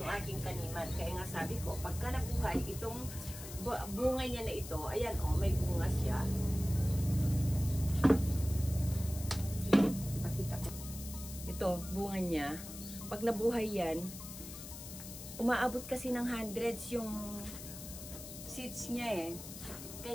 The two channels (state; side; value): noise; left; hiss, 11 dB below the sound